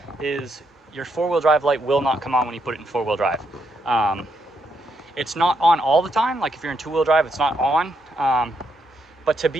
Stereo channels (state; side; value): normal; both; correlation 0.78